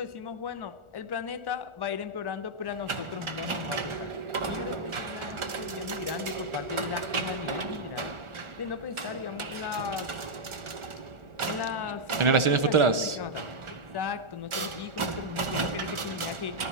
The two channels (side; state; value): left; late; 1.4 ms